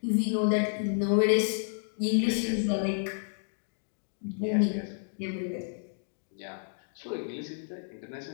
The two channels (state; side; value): silent; right; digital silence